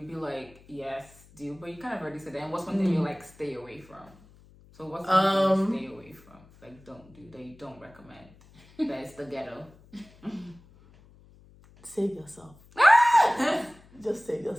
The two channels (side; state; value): left; noise; hum, 25 dB below the sound